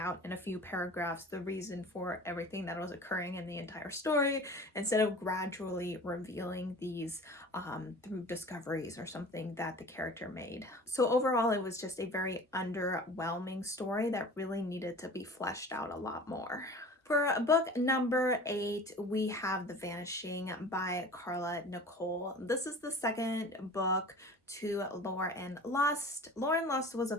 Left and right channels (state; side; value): normal; both; correlation 0.41